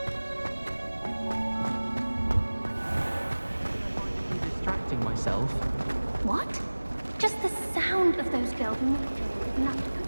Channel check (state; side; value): inverted; both; correlation -1.00